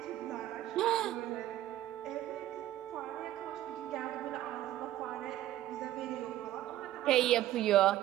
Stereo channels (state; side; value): quieter; left; 13.7 dB